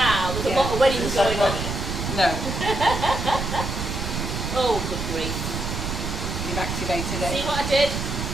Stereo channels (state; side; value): noise; right; rumble, 4 dB below the sound